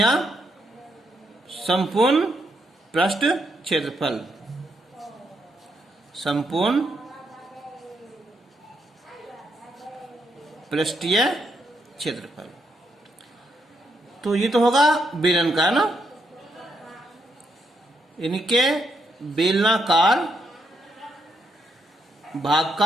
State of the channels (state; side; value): normal; both; correlation 0.78